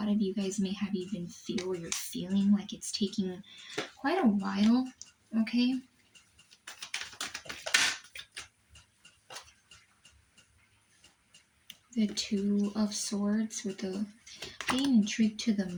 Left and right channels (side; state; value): both; identical; correlation 1.00